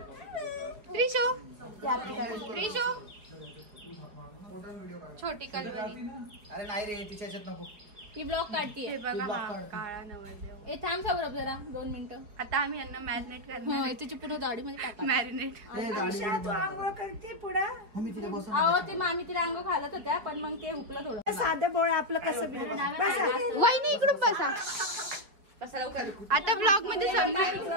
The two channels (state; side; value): late; left; 5.0 ms